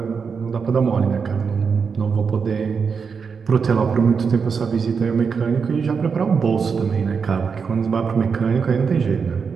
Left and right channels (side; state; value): left; quieter; 5.8 dB